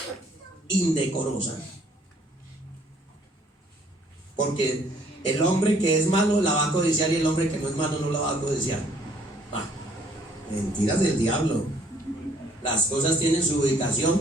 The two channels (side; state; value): both; normal; correlation 0.62